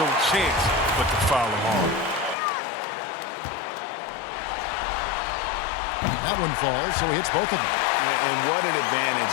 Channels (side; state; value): right; drops out; at 2.4 s